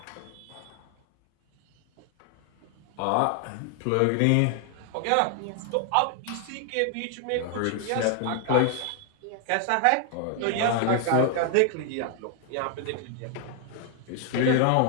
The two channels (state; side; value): different; both; correlation 0.00